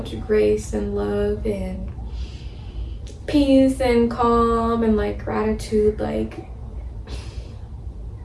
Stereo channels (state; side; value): identical; both; correlation 1.00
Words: grace and love and peace and calm and like gratitude. Like,